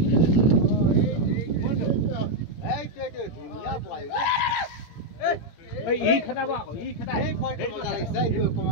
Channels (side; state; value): right; late; 17 ms